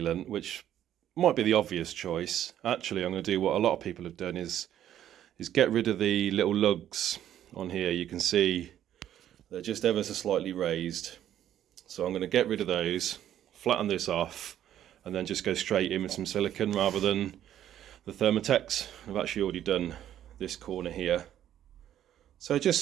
which might be the obvious choice, actually I'm going to do what a lot of people have done, is get rid of the little lugs on here. You can see they're just ever so slightly raised. So I'm going to get rid of those, flatten this off, and then just go straight in with some silicone rather than the Thermotex. I've actually already done this corner here. So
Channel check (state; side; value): quieter; left; 11.2 dB